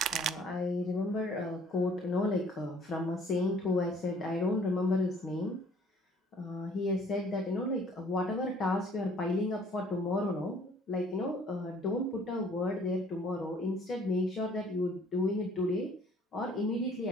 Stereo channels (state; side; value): normal; both; correlation 0.57